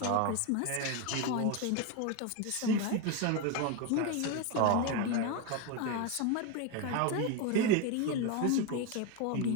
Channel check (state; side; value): different; both; correlation 0.02